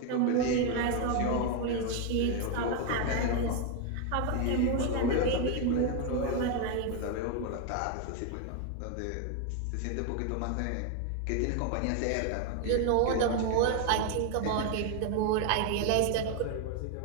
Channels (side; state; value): both; different; correlation 0.01